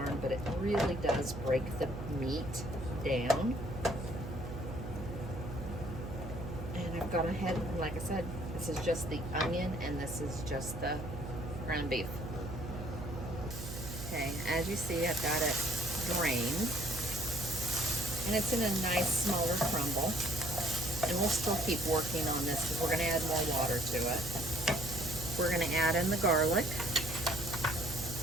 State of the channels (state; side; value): noise; right; hum, 8 dB below the sound